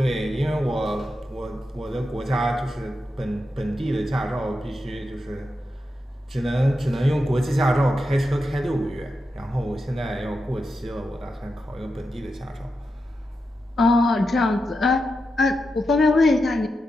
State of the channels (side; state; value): both; normal; correlation 0.88